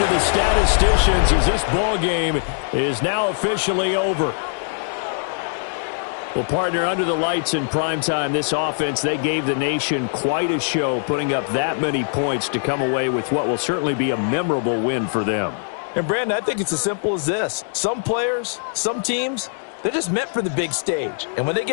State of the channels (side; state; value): right; silent; digital silence